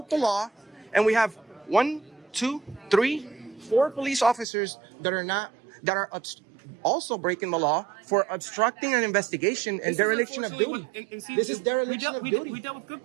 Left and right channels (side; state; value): left; drops out; at 4.5 s